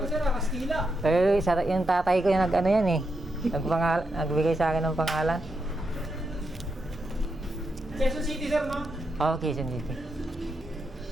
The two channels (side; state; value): both; normal; correlation 0.84